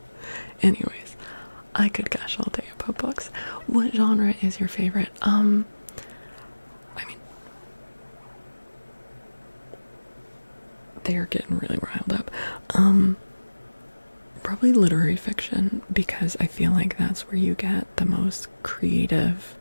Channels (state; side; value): inverted; both; correlation -1.00